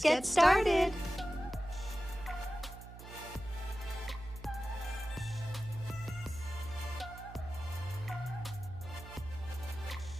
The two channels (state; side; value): noise; right; hum, 14 dB below the sound